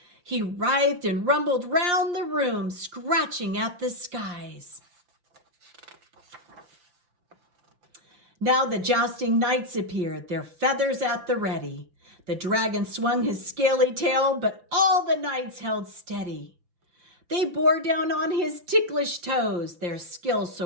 He writhed and rumbled round the room, scratching at the skies. Now the jousting knights appeared, their feathers at the ready. The dragon swung his scaly tail, but all the knights held steady. They bore down on his ticklish toes, their skill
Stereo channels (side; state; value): left; late; 5.6 ms